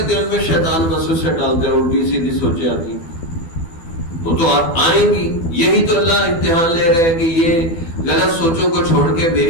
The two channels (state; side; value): late; right; 12 ms